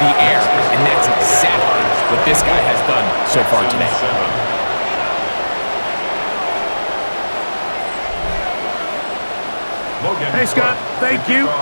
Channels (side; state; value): both; inverted; correlation -1.00